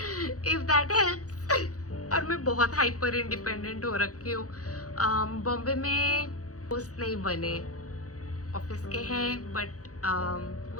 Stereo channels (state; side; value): late; right; 0.66 ms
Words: इफ दैट हेल्प्स। और मैं बहुत हाइपर इंडिपेंडेंट हो रखी हूँ। बॉम्बे में दोस्त नहीं बने, ऑफिस के हैं बट